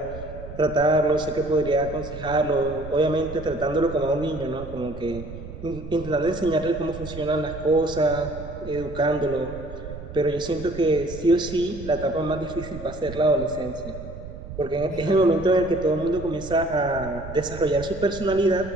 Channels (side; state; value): right; noise; rumble, 12 dB below the sound